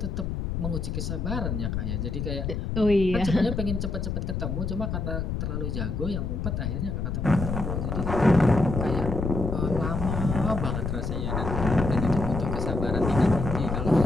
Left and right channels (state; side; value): noise; left; rumble, 2 dB below the sound